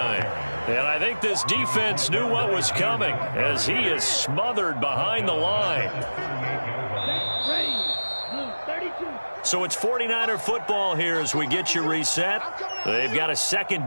And I think this defense knew what was coming as he is smothered behind the line. So it's 49er football here as we get you reset. They've got a second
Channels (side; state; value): both; inverted; correlation -1.00